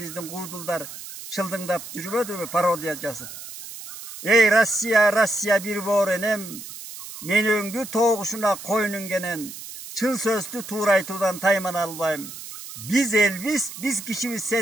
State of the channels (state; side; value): noise; right; hiss, 12 dB below the sound